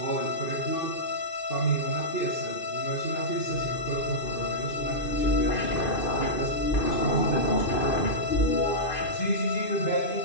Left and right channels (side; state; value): right; late; 2.5 ms